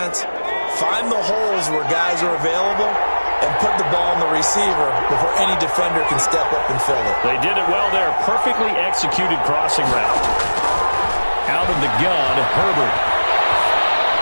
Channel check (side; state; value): both; inverted; correlation -1.00